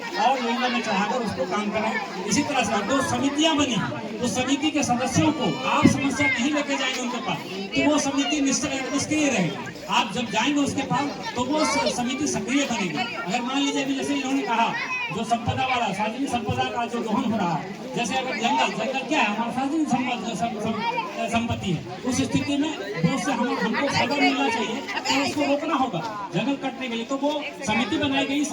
और योजना में चढ़ाकर उसको काम करें। इसी तरह से जो समितियां बनी उस समिति के सदस्यों को आप समस्या नहीं लेके जाएंगे उनके पास तो वो समिति निष्क्रिय रहेगी। आप जब जाएंगे उसके पास तो वो समिति सक्रिय बनेगी। अगर मान लीजिए अभी जैसे इन्होंने कहा जो संपदा वाला सार्वजनिक संपदा का जो दोहन हो रहा है, जैसे अगर जंगल क्या है हमारा सार्वजनिक संपत्ति है, उस स्थिति में उससे हमको खबर मिलना चाहिए तो उसको रोकना होगा जंगल कटने के लिए। तो वो समिति बनाई गई,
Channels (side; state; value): both; identical; correlation 1.00